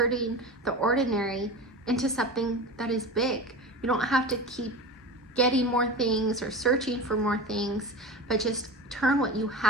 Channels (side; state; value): both; normal; correlation 0.30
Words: the ordinary into something that is big. You don't have to keep getting more things or searching for more things, but just turn what you